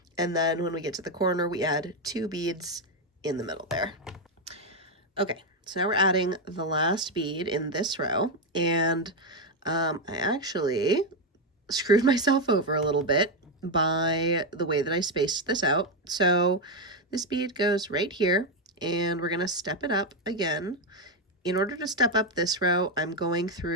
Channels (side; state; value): both; normal; correlation 0.06